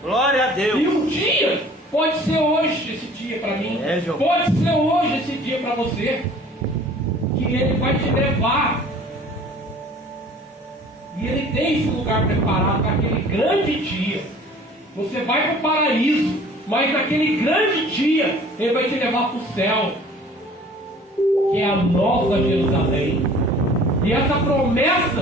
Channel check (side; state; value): both; normal; correlation 0.49